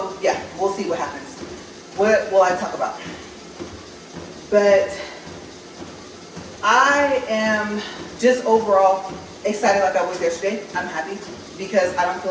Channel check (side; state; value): both; identical; correlation 1.00